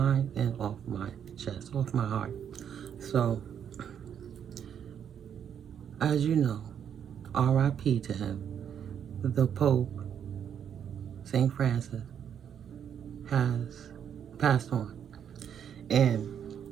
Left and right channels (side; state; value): left; quieter; 8.6 dB